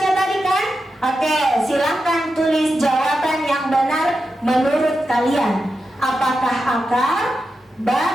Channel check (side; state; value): both; normal; correlation 0.89